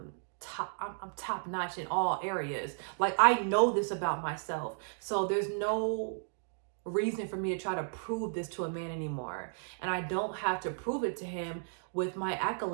I'm top notch in all areas. Like I know this about myself. So there's no reason for me to try to prove this to a man anymore. And I don't have to prove it to him with my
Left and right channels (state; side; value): silent; left; digital silence